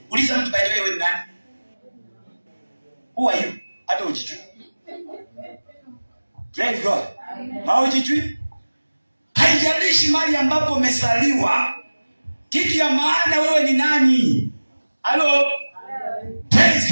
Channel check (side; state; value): both; inverted; correlation -1.00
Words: Uliza mtu by the way, wewe ni nani? Who are you? Hata ujijui. Praise God. Haujijui? Haijalishi mahali ambapo umezaliwa, kitu ya maana wewe ni nani. Hello? Praise